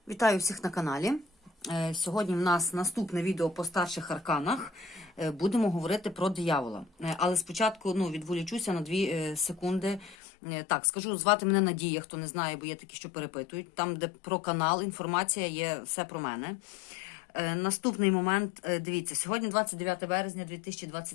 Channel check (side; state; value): right; drops out; at 10.2 s